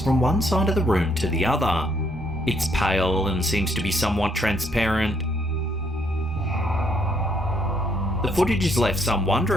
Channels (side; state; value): both; normal; correlation 0.70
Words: from one side of the room to the other. It's pale and seems to be somewhat transparent. The footage has left some